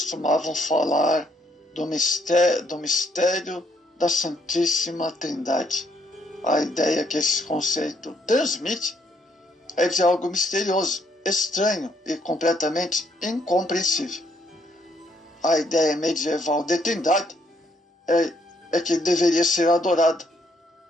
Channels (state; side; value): normal; both; correlation 0.70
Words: falar do mistério da Santíssima Trindade. A ideia que esse conceito transmite é de algo misterioso, estranho e completamente incompreensível. A ideia medieval de Trindade é que deveria ser adorada,